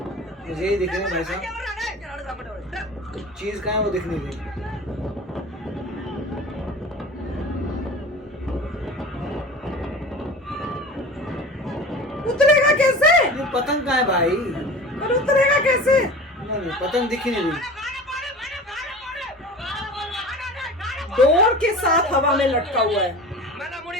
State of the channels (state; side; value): normal; both; correlation 0.36